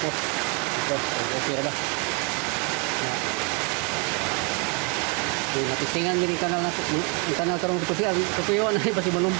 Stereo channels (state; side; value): quieter; left; 34.4 dB